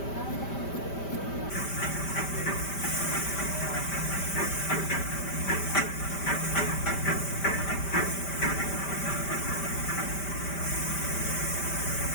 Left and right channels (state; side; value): late; right; 5.1 ms